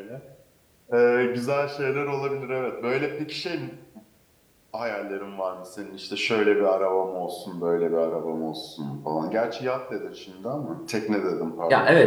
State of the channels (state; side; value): identical; both; correlation 1.00